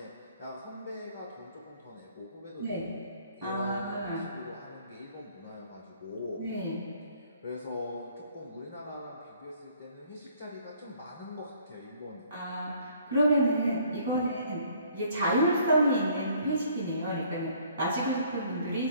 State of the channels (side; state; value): both; inverted; correlation -0.59